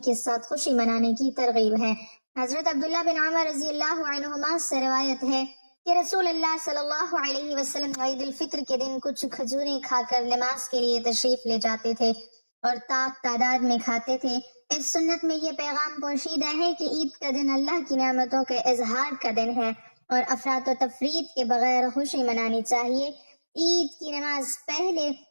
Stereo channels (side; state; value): both; inverted; correlation -1.00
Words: کے ساتھ خوشی منانے کی ترغیب ہے۔ حضرت عبداللہ بن عمر رضی اللہ عنہما سے روایت ہے کہ رسول اللہ صلی اللہ علیہ وسلم عید الفطر کے دن کچھ کھجوریں کھا کر نماز کے لیے تشریف لے جاتے تھے اور تعداد میں کھاتے تھے۔ اس سنت میں یہ پیغام پوشیدہ ہے کہ عید کا دن اللہ کی نعمتوں کے اظہار کا دن ہے اور افراط و تفریط کے بغیر خوشی منانی چاہیے۔ عید کی نماز پہلے